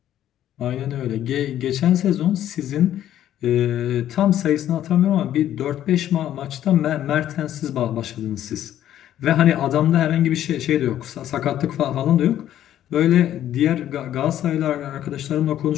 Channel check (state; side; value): quieter; right; 11.7 dB